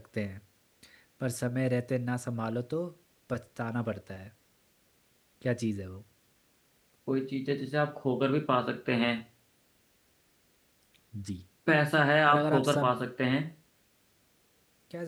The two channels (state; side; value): identical; both; correlation 1.00